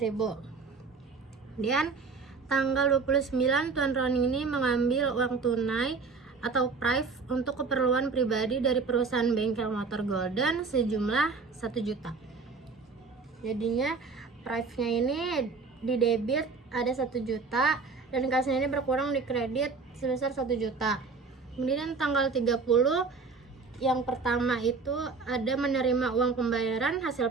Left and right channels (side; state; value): left; quieter; 4.5 dB